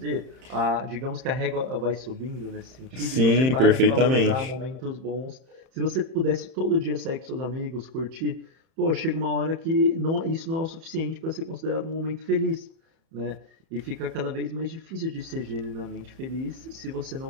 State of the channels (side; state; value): left; late; 31 ms